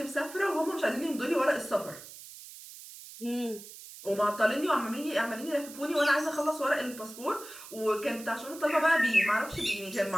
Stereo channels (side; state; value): right; noise; hiss, 15 dB below the sound